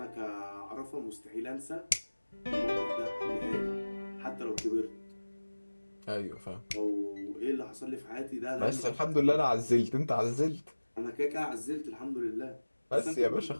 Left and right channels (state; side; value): inverted; both; correlation -1.00